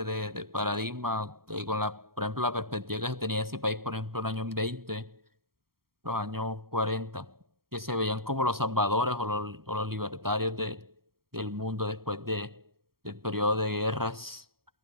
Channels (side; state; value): left; late; 0.93 ms